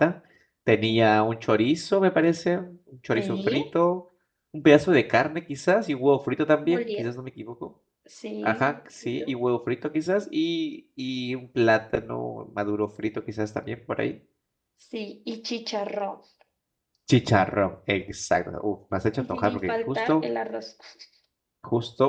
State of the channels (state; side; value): identical; both; correlation 1.00